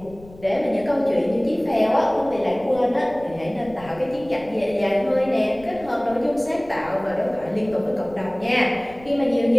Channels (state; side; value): noise; left; rumble, 21 dB below the sound